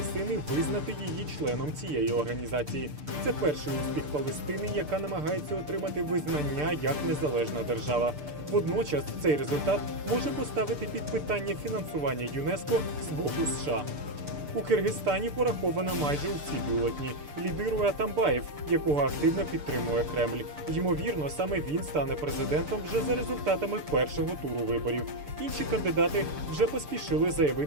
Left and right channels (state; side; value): late; left; 6.8 ms